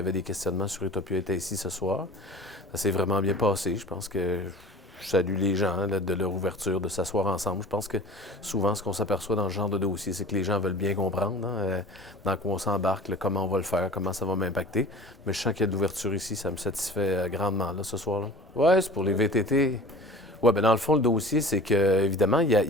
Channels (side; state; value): both; normal; correlation 0.41